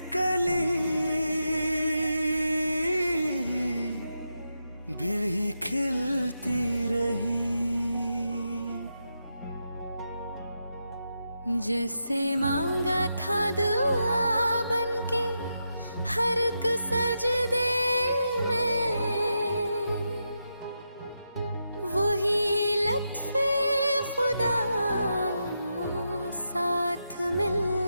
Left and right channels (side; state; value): both; inverted; correlation -0.86